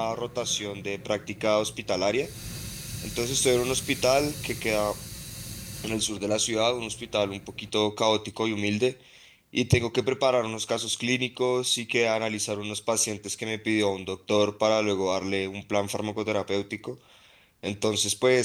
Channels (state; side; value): identical; both; correlation 1.00